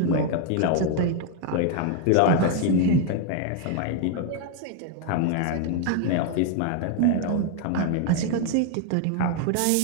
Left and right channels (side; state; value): both; different; correlation 0.01